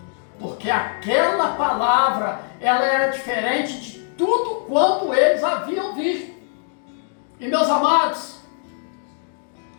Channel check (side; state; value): right; silent; 64 dB below the other